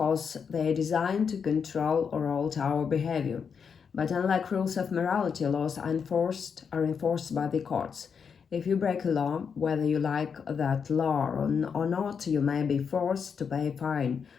they are designed to control or alter our behavior. But unlike rules of morality, laws are enforced by the courts. If you break a law, whether you like that law or not, you may be forced to pay a fine,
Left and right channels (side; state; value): right; quieter; 6.4 dB